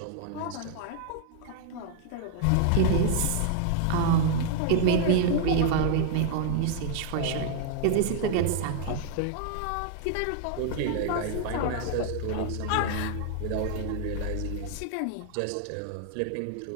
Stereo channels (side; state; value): both; different; correlation 0.00